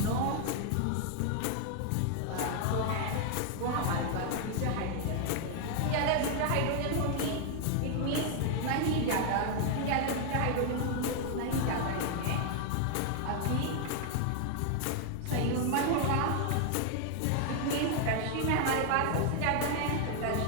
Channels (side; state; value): both; different; correlation 0.00